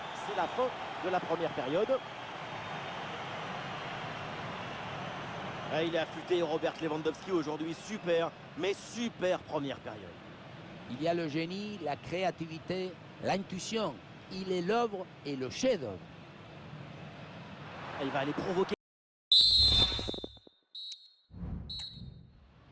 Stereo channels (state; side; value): identical; both; correlation 1.00